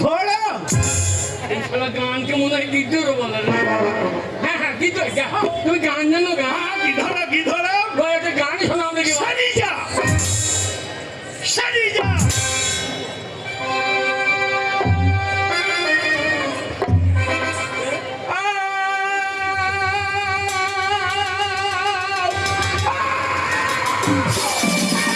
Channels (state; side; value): identical; both; correlation 1.00